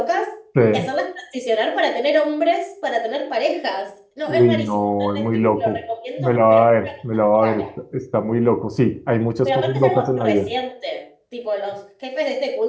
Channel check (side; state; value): both; identical; correlation 1.00